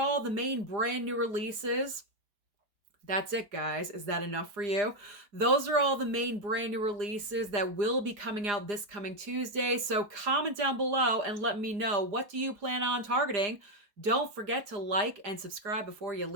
the main brand new releases. That's it, guys. Is that enough for you? Those are all the main brand new releases that will be coming out this coming Tuesday. So comment down below and let me know, what do you plan on targeting? Don't forget to like and subscribe before you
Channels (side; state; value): left; late; 4.9 ms